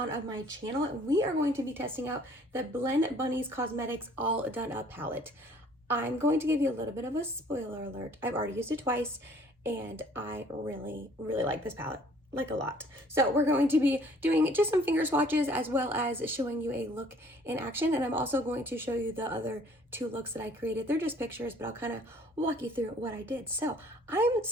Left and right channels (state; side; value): normal; both; correlation 0.57